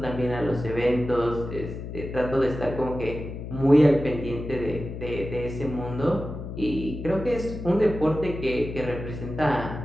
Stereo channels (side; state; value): left; noise; hum, 8 dB below the sound